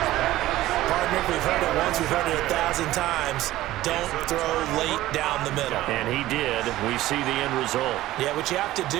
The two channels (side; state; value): left; quieter; 15.7 dB